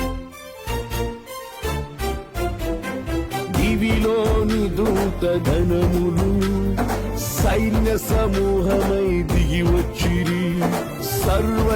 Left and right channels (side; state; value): both; identical; correlation 1.00